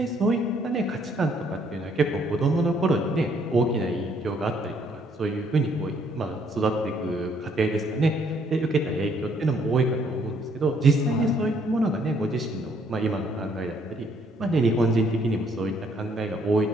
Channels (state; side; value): normal; both; correlation 0.66